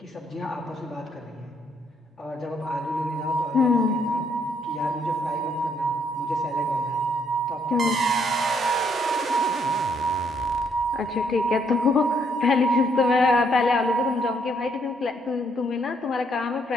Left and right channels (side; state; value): both; normal; correlation 0.71